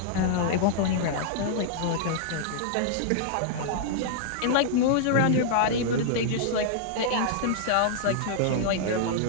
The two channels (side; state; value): both; different; correlation -0.01